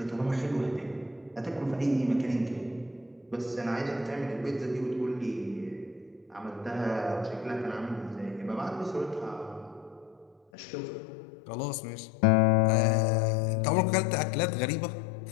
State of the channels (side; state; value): right; drops out; at 10.4 s